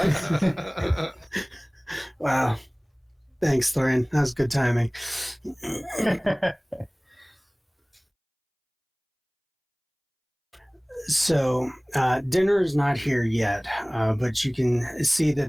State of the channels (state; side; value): identical; both; correlation 1.00